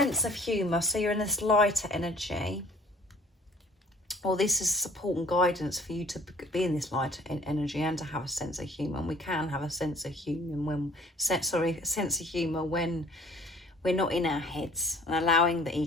of humour. So you're in this lighter energy. Well, this is support and guidance for you to be in this light energy and to have a sense of humour. And we can have a sense of humour when we're not in our heads and allowing the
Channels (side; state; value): both; normal; correlation 0.54